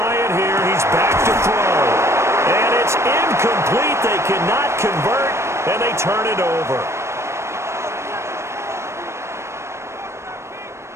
it here. He's back to throw. And it's incomplete. They cannot convert, and they turn it over.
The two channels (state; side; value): late; left; 0.13 ms